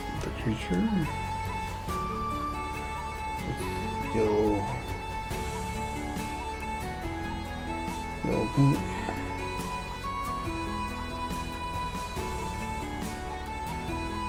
the creature. Get a little yellow paint.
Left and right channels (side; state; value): both; identical; correlation 1.00